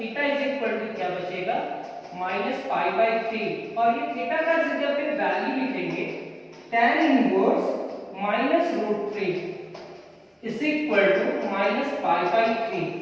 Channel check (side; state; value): both; identical; correlation 1.00